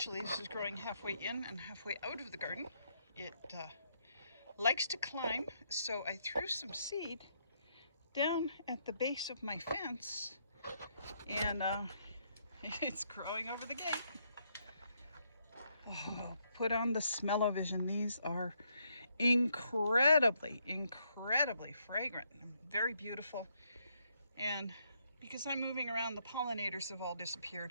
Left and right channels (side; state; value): both; inverted; correlation -0.75